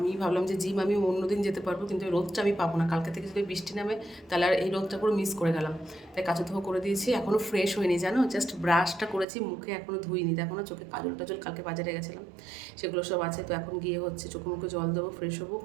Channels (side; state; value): left; drops out; at 9.2 s